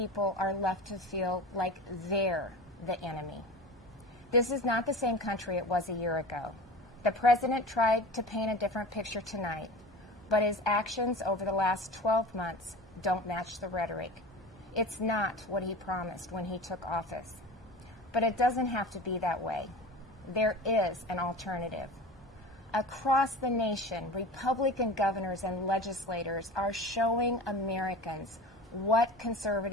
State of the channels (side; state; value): both; normal; correlation 0.34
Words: are left to feel like they're the enemy. This is not the same country it was a year ago. The president tried to paint a different picture tonight, but his actions over the last 12 months don't match the rhetoric. It's not what he promised when he took office. But it doesn't have to be that way. There is an alternative. Across the nation, Republican governors and legislators are showing Americans what